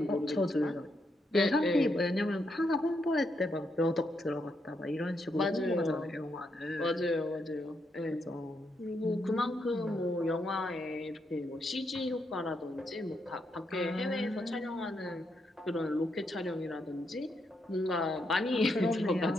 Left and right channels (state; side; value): normal; both; correlation 0.80